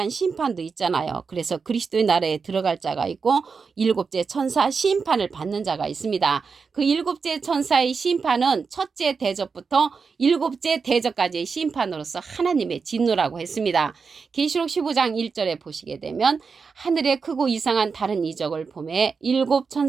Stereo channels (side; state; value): left; quieter; 5.2 dB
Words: 심판도 있잖아요. 그래서 그리스도의 나라에 들어갈 자가 있고 일곱째 천사 심판을 받는 자가 있습니다. 그 일곱째 천사의 심판은 첫째 대접부터 일곱째 대접까지의 심판으로서 하나님의 진노라고 했습니다. 계시록 15장 1절에 보시게 되면 하늘에 크고 이상한 다른 이적을 보매 일곱